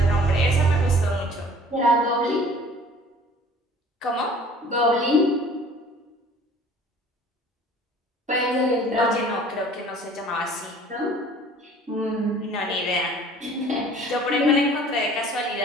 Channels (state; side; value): normal; both; correlation 0.50